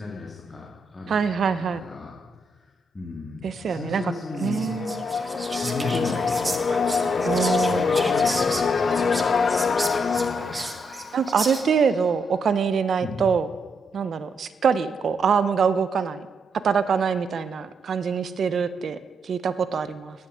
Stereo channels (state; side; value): normal; both; correlation 0.78